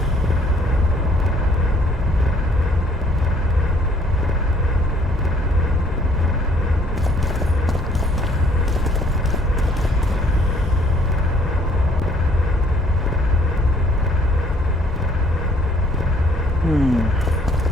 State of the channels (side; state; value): both; normal; correlation 0.61